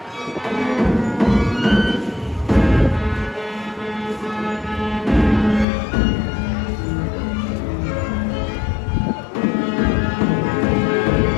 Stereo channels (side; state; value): right; drops out; at 5.7 s